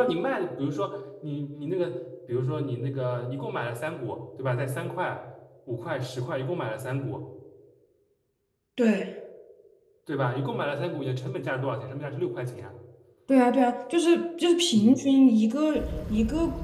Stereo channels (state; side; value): identical; both; correlation 1.00